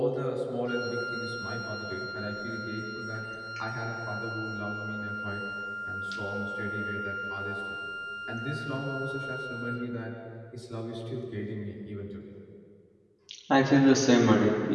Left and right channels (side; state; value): both; identical; correlation 1.00